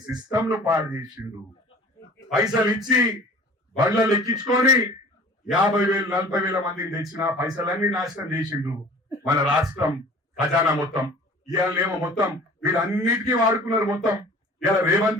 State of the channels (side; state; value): both; normal; correlation 0.45